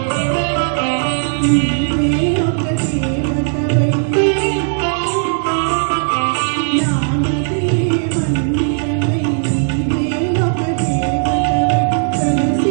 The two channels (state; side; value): silent; left; digital silence